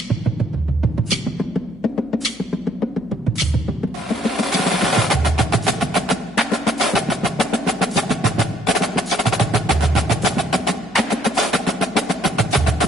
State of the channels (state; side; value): noise; left; hum, 26 dB below the sound